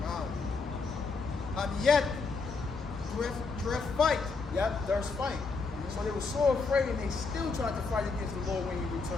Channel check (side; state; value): right; quieter; 4.3 dB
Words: Wow. And yet, dress fight. Yep, there's fight. So they were so afraid, and they still tried to fight against the Lord when he